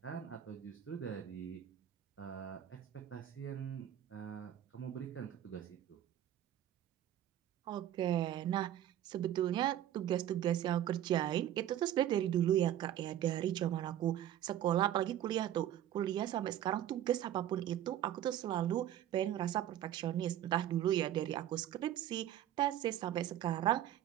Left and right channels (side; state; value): left; quieter; 11.7 dB